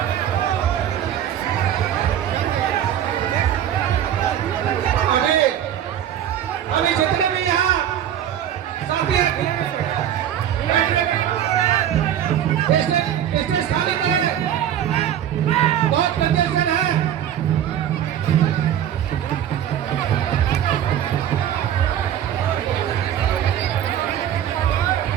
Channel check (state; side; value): quieter; left; 10.4 dB